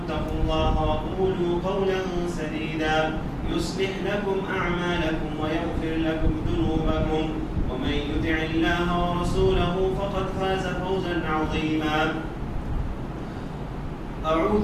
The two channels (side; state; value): both; identical; correlation 1.00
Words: الله وقولوا قولا سديدا يصلح لكم أعمالكم ويغفر لكم ذنوبكم ومن يطع الله ورسوله فقد فاز فوزا عظيما